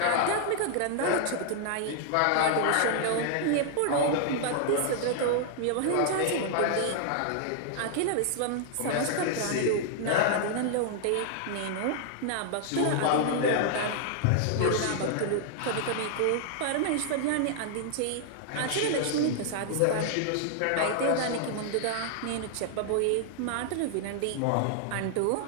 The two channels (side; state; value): both; different; correlation -0.01